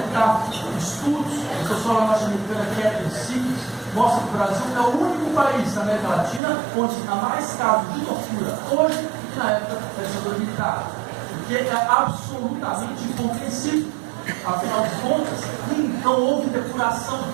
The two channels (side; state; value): left; drops out; at 6.4 s